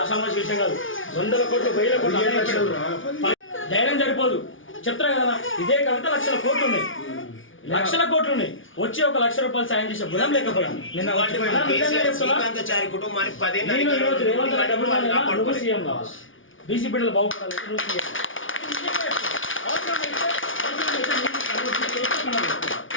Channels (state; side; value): late; right; 0.57 ms